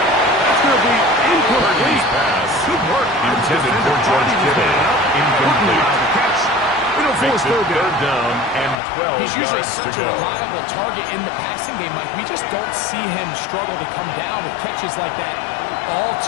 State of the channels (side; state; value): right; drops out; at 8.8 s